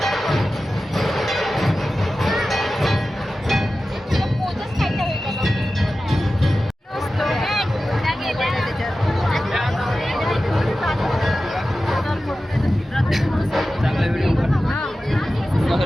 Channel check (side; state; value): both; normal; correlation 0.94